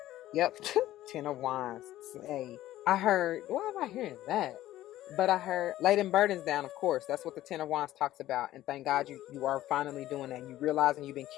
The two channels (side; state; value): right; quieter; 14.4 dB